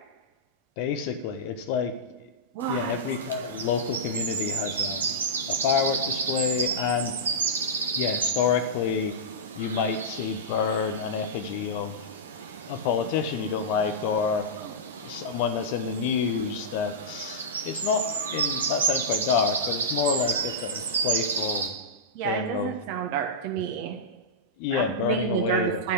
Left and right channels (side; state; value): both; normal; correlation -0.14